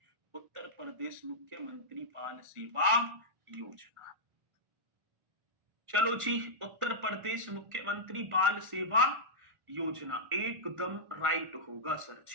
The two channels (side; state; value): left; late; 1.5 ms